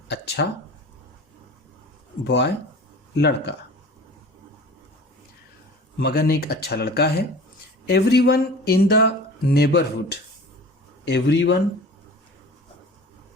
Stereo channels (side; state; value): both; normal; correlation 0.40